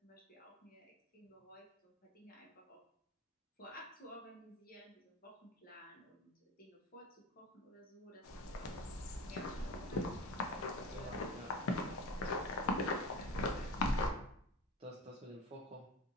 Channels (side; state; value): both; normal; correlation 0.35